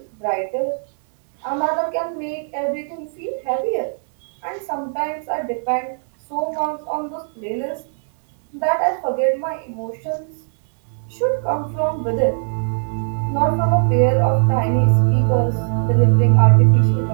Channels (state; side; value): silent; left; digital silence